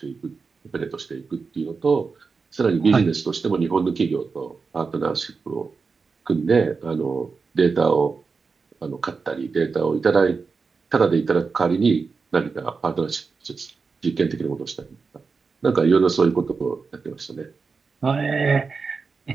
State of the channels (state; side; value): quieter; left; 4.8 dB